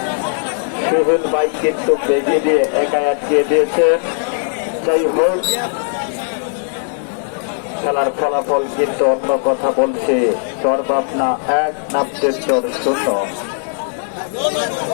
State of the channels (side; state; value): right; silent; digital silence